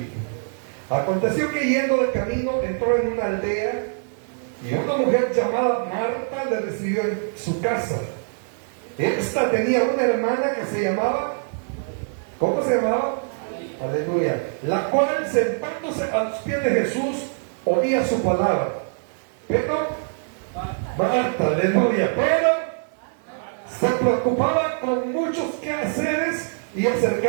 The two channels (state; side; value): silent; left; 63 dB below the other